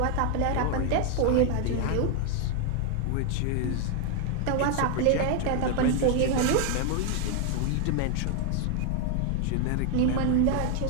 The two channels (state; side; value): different; both; correlation 0.00